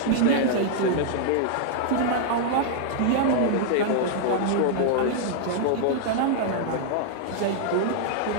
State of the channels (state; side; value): different; both; correlation -0.01